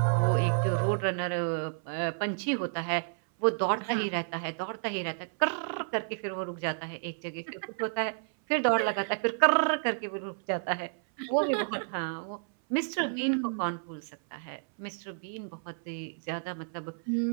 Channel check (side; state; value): left; silent; 57 dB below the other